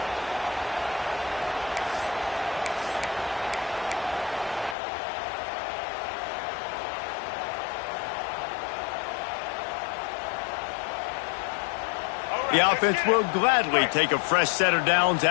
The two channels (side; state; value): right; drops out; at 4.8 s